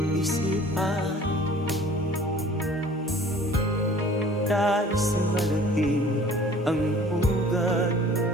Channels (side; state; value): both; normal; correlation 0.50